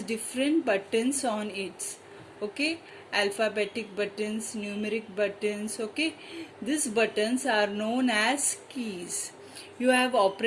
different buttons on it. Okay, alphabetic buttons, numeric buttons. Okay, these buttons are known as keys. You have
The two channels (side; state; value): both; identical; correlation 1.00